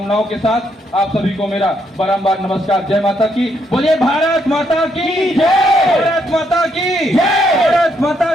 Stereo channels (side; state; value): both; normal; correlation 0.75